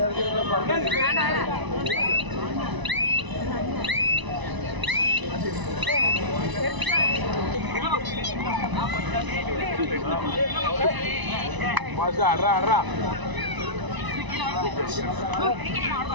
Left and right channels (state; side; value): late; left; 1.0 ms